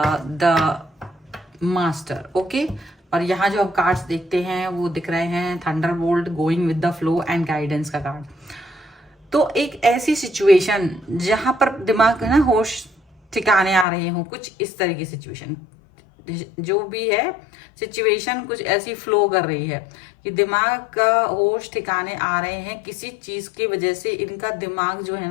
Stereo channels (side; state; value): right; drops out; at 13.9 s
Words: the master. Okay, और यहाँ जो आप कार्ड्स देखते हैं वो दिख रहे हैं Thunderbolt, going with the flow and guidance का कार्ड। तो एक ऐसी सिचुएशन जहां पर दिमाग है ना, होश ठिकाने आ रहे हो, कुछ इस तरह की सिचुएशन जो भी है, सिचुएशन कुछ ऐसी फ्लो कर रही है कि दिमाग का होश ठिकाने आ रहे हैं। किसी चीज की वजह से इनका दिमाग जो है